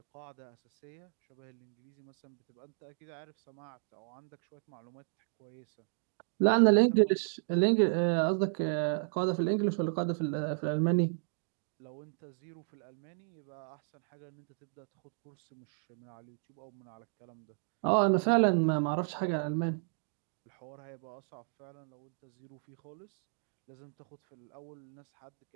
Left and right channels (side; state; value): left; silent; digital silence